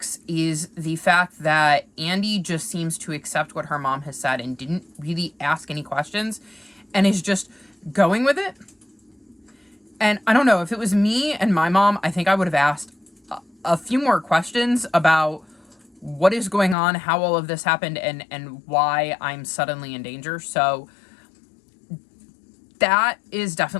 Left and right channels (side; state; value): right; drops out; at 16.8 s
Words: is the fact that Andy just seems to accept what her mom has said and didn't really ask any questions and is just going with it. And I don't know, if it was me and my mom, I think I would have asked a few more questions about what is going on, how all of this happened, and why I'm suddenly in danger. So that is